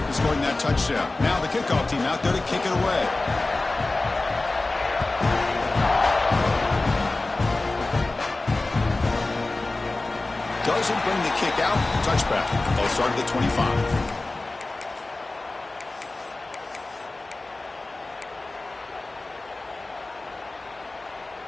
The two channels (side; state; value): right; quieter; 3.1 dB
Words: scoring that touchdown. Now the kickoff team out there to kick it away. Doesn't bring the kick out. Touchback. They'll start at the 25.